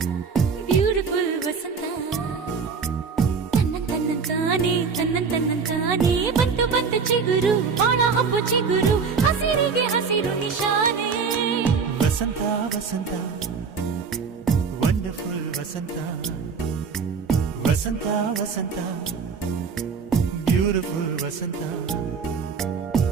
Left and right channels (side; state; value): left; quieter; 5.5 dB